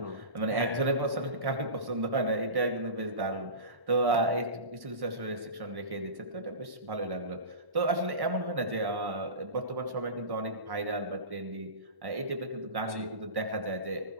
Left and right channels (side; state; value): left; late; 1.1 ms